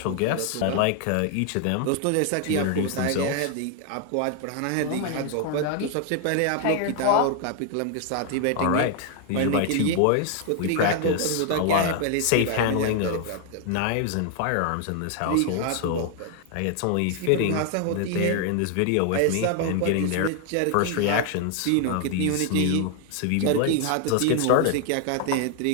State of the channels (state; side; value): different; both; correlation 0.00